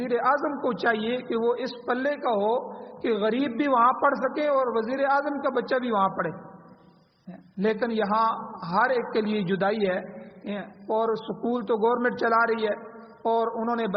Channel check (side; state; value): both; identical; correlation 1.00